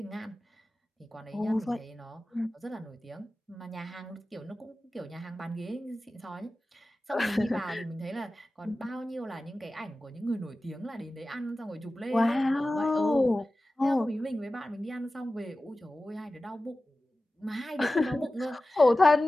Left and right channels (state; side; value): normal; both; correlation 0.95